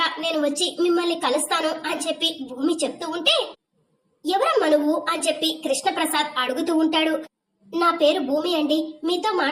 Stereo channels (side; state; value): both; identical; correlation 1.00